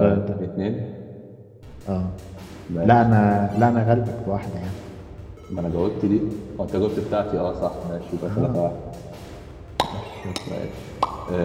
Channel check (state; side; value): identical; both; correlation 1.00